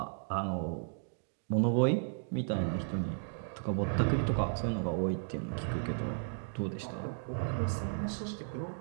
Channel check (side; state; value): left; silent; digital silence